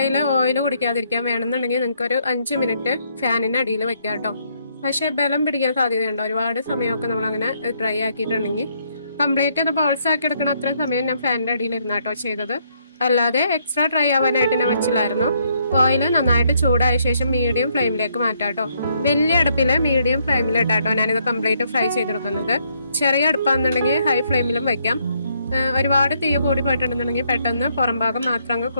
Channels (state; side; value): inverted; both; correlation -0.72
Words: ഓയിൽ കുടിക്കാതിരിക്കാൻ വേണമെന്നുണ്ടെങ്കിൽ നിങ്ങൾക്കൊരു 5 മിനിറ്റ് ഫാനിന് അടിയിൽ വെക്കാം കേട്ടോ. പക്ഷേ ബലം പിടിക്കാൻ സാധ്യതയുണ്ടോ. ഒരുപാട് സമയമൊക്കെ നമ്മളങ്ങനെ ഡ്രൈ ആക്കിയിട്ടുണ്ടെങ്കിൽ കംപ്ലീറ്റ് അത് ബോൾസ് ആക്കി എടുക്കണം. അത്രയും സമയം ഞാൻ ഫാനിൻ്റെ അടിയിൽ ഇരുന്നാട്ടോ ചെയ്തത്. അല്ലാതെ എക്സ്ട്രാ ഡ്രൈ ആവാനായിട്ട് ഞാൻ വെച്ചില്ലായിരുന്നു. ഓയിൽ നന്നായിട്ട് ചൂടായ ശേഷം മീഡിയം ഫ്ലെയിമിലേക്ക് മാറ്റാം കേട്ടോ. വലിയ അടുപ്പിൽ മീഡിയം ഫ്ലെയിമിലിട്ടാട്ടോ ഞാനിത് കംപ്ലീറ്റ് ഫ്രൈ ചെയ്തെടുക്കുന്നത്. ചെറിയ അടുപ്പാണെന്നുണ്ടെങ്കിൽ ഹൈ ഫ്ലെയിമിലും വയ്ക്കാം. ഒരുപാട് തീ കൂടി പോയിട്ടുണ്ടെന്നുണ്ടെങ്കിൽ പെട്ടെന്ന് പുറം ഭാഗം മാത്രം അങ്ങ്